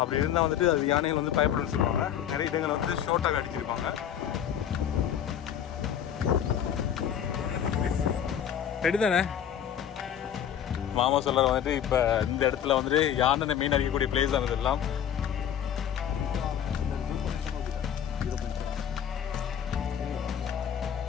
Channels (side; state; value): right; quieter; 9.4 dB